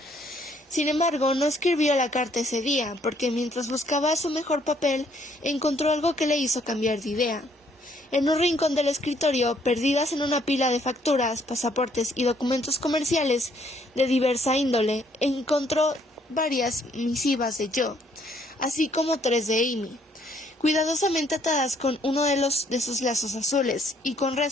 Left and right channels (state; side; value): normal; both; correlation 0.67